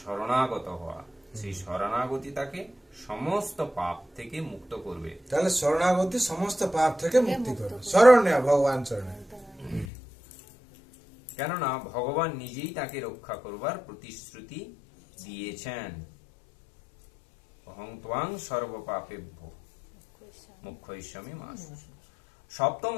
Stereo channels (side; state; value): right; drops out; at 9.9 s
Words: শরণাগত হওয়া। সেই শরণাগতি তাকে সমস্ত পাপ থেকে মুক্ত করবে। তাহলে শরণাগতি সমস্ত পাপ থেকে মুক্তি করবে, শরণ নেওয়া ভগবান শরণে। কেননা ভগবান নিজেই তাকে রক্ষা করবার প্রতিশ্রুতি দিয়েছেন। অহং ত্বাং সর্বপাপেভ্যো মুখ্যৈষ্যামি মা শুচি। সপ্তম